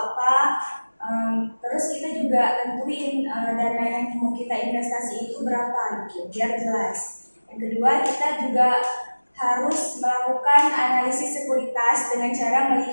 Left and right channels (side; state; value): both; inverted; correlation -1.00